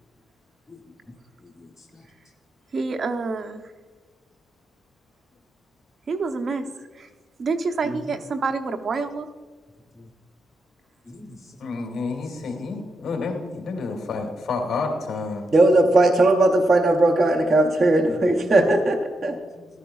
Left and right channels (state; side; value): normal; both; correlation 0.84